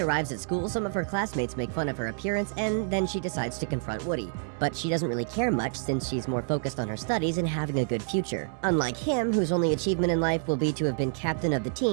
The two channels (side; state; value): left; silent; digital silence